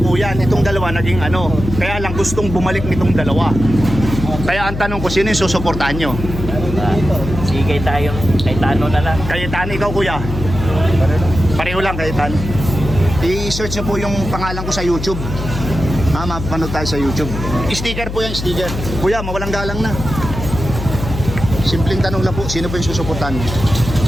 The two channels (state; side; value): noise; left; hum, 6 dB below the sound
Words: Itong dalawa naging ano. Kaya lang gustong bumalik nitong dalawa. Kaya ang tanong ko, sino yung susuportahan nyo? Sige tayo. Cayetano na lang. Cayetano, ikaw kuya? Pareho lang, Cayetano. I-search nyo po yung pangalan ko sa YouTube. Mapanood tayo sa YouTube. Sticker po yan, sticker. Kuya, mawalang galang na. Simpleng tanong lang po, sino po yung susuportahan mo?